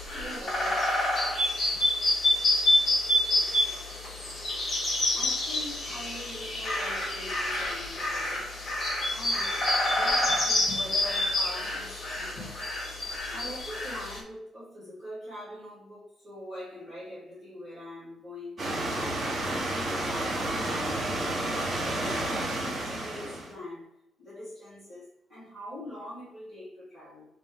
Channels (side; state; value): both; normal; correlation 0.76